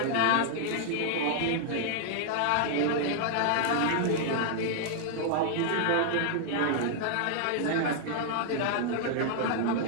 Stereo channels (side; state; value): both; different; correlation 0.00